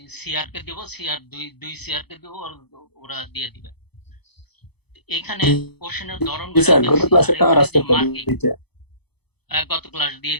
সিআর কে দিব, সিআর দুই সিআর কে দিব, ওরা দিয়ে দিবে। এখানে কোশ্চেনের ধরনগুলো গত ক্লাস দিয়ে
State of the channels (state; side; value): late; right; 0.98 ms